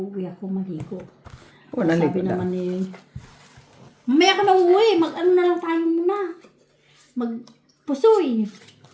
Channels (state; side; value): identical; both; correlation 1.00